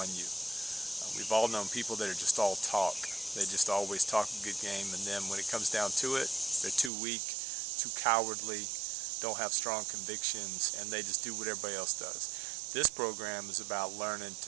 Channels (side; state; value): left; drops out; at 6.9 s